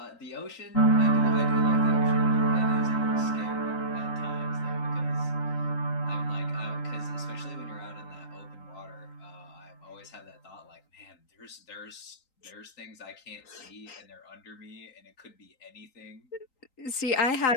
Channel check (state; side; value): late; right; 3.9 ms